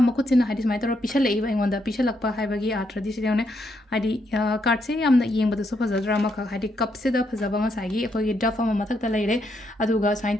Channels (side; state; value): both; normal; correlation 0.78